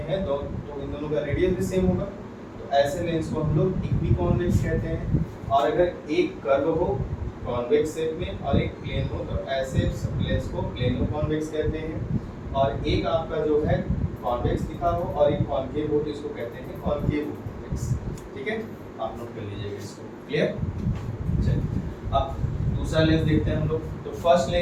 तो इन दोनों का रेडियस भी सेम होगा, तो ऐसे लेंस को हम लोग इक्वी कॉन्वेक्स कहते हैं। और अगर एक कर्व हो कॉन्वेक्स शेप में और एक प्लेन हो, तो ऐसे लेंस को प्लेनो कॉन्वेक्स कहते हैं। और एक आपका जो है कॉन्वेक्स दिखा हो और एक कॉन्केव हो, तो इसको कहते हैं कॉन्केव कॉन्वेक्स, ठीक है, आप नोट कर लीजिएगा इसको, क्लियर। चलिए अब दूसरा लेंस देखते हैं हम लोग। तो फर्स्ट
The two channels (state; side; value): identical; both; correlation 1.00